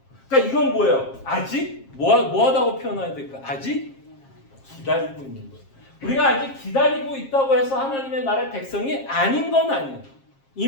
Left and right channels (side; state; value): right; late; 7.4 ms